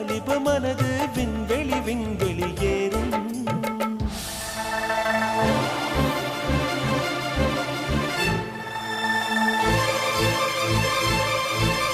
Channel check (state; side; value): identical; both; correlation 1.00